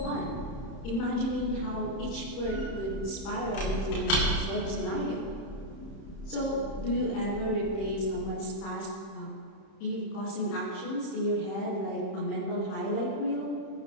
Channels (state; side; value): late; right; 31 ms